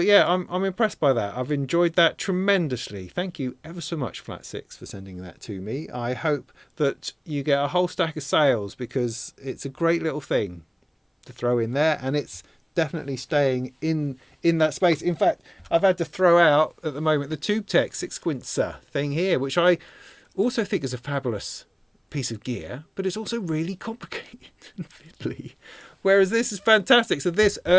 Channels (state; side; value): identical; both; correlation 1.00